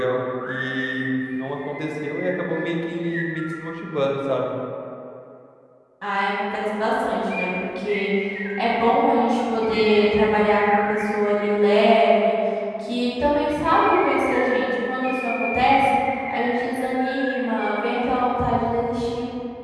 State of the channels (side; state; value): both; identical; correlation 1.00